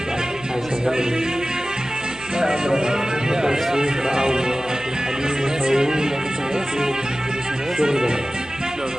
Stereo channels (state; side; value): noise; right; rumble, 23 dB below the sound